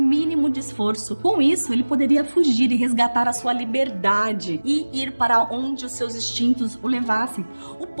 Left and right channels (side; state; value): both; inverted; correlation -1.00